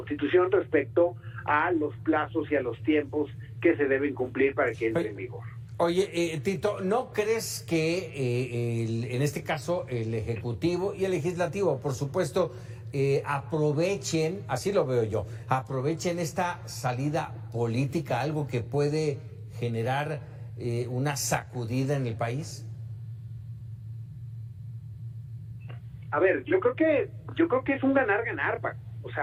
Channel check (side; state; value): both; identical; correlation 1.00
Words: respecto a los plazos y a los tiempos que se deben cumplir para que entre en vigor. Oye, Tito, ¿no crees que en este caso el Ejecutivo y el Legislativo, por supuesto, aprovechen, así lo veo yo, aprovechen esta salida política, algo que puede generar una sacudida en el país? A ver, yo creo que es un ganar-ganar, Paco. O